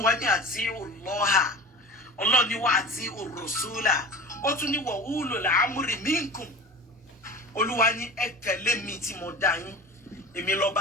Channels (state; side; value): normal; both; correlation 0.34